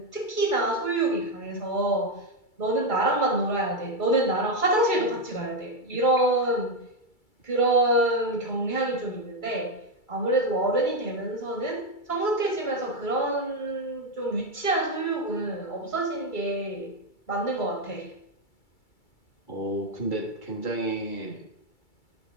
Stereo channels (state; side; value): late; right; 2.3 ms